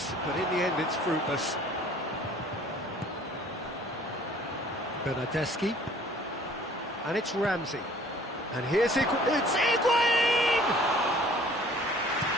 but in the end it's fruitless. Bernardeschi. And it's Ramsey. And here's it's Higuain!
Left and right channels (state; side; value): normal; both; correlation 0.53